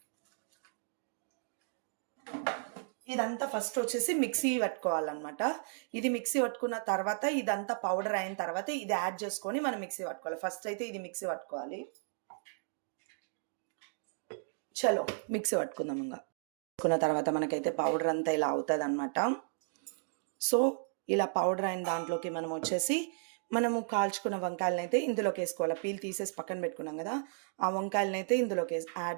ఇదంతా ఫస్ట్ వచ్చేసి మిక్సీ పట్టుకోవాలన్నమాట. ఇది మిక్సీ పట్టుకున్న తర్వాత ఇదంతా పౌడర్ అయిన తర్వాత ఇది యాడ్ చేసుకొని మనం మిక్సీ పట్టుకోవాలి. ఫస్ట్ అయితే ఇది మిక్సీ పట్టుకోవాలి. చలో మిక్సీ పట్టుకుందాం. ఇంకా పట్టుకున్న తర్వాత మనకైతే పౌడర్ అంతా ఇలా అవుతుంది అనమాట. సో ఇలా పౌడర్ అయిన దాంట్లోకి మనం వచ్చేసి మనము కాల్చుకున్న వంకాయలను అయితే ఇందులోకి వేసుకోవాలి. పీల్ తీసేసి పక్కన పెట్టుకున్నాం కదా, ఆ వంకాయలను అయితే ఇందులోకి యాడ్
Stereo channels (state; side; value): silent; left; digital silence